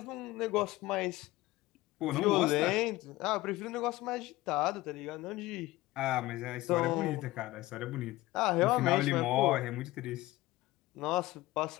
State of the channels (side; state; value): right; quieter; 18.3 dB